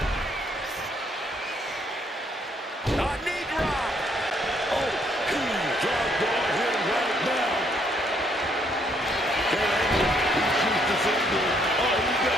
A knee drop. Oh, he's dropped on him right now. That angle, he shoots the finger. Oh, he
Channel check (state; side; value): normal; both; correlation 0.69